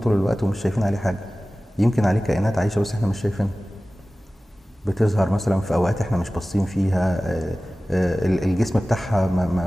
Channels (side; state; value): both; normal; correlation 0.97